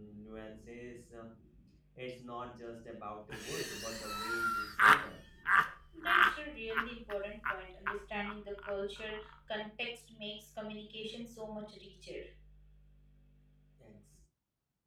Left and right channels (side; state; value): both; identical; correlation 1.00